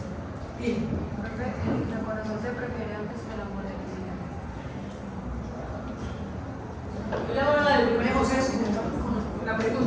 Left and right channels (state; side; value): identical; both; correlation 1.00